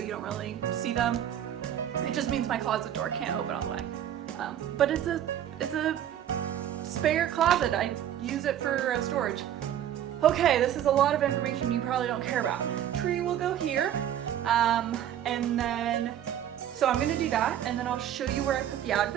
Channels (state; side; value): quieter; left; 10.6 dB